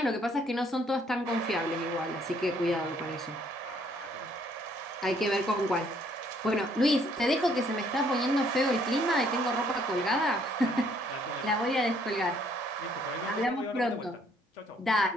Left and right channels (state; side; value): normal; both; correlation 0.65